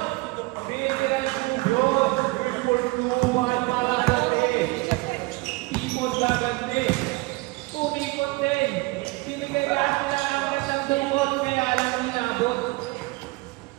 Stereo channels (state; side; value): quieter; left; 23.1 dB